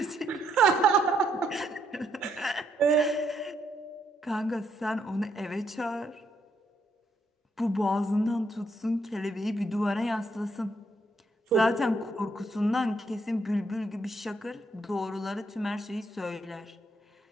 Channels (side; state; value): both; normal; correlation 0.74